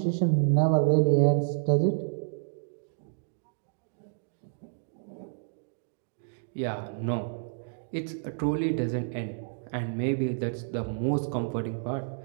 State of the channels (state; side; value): silent; left; digital silence